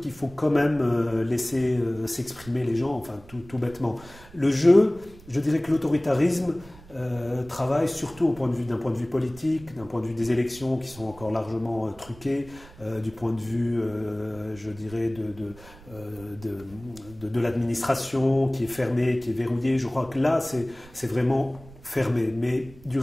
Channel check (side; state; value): right; noise; rumble, 21 dB below the sound